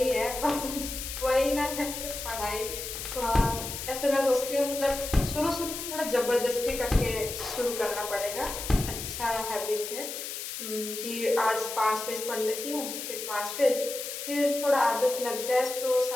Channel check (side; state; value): left; noise; hiss, 7 dB below the sound